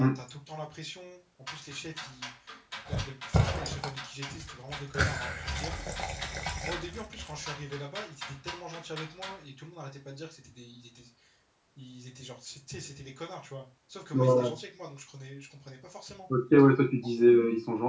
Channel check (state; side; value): identical; both; correlation 1.00